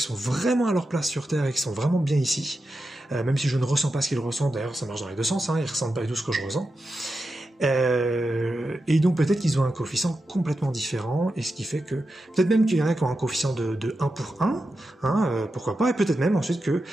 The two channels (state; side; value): normal; both; correlation 0.89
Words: sont vraiment à leur place sur Terre et qui sont vraiment bien ici, même si je ne ressens pas ce qu'ils ressentent, d'ailleurs ça marche dans les deux sens, ils ressentent pas du tout ce que je ressens, et donc peut-être qu'ils ont un coefficient complètement différent, et ce qui fait que, peut-être même qu'il y en a qui ont un coefficient de 1 pour 1, pourquoi pas, et peut-être même ensuite que,